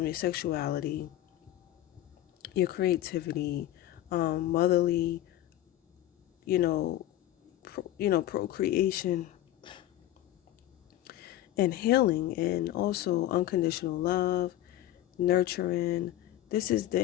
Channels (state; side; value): quieter; right; 13.7 dB